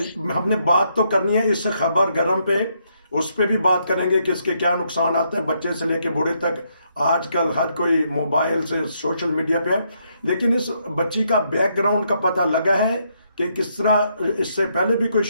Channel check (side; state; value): both; inverted; correlation -0.75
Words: हमने बात तो करनी है इस खबर गरम पे, उस पे भी बात करेंगे कि इसके क्या नुकसान आते हैं, बच्चे से लेके बूढ़े तक। आजकल हर कोई मोबाइल से, सोशल मीडिया पे है। लेकिन इस बच्ची का बैकग्राउंड का पता लगा है कि किस तरह इससे पहले भी कोई